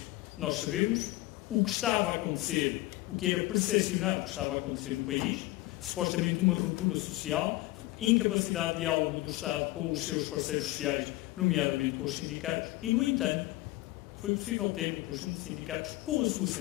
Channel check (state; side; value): quieter; right; 18.9 dB